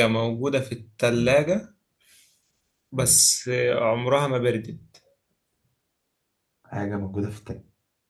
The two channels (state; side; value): identical; both; correlation 1.00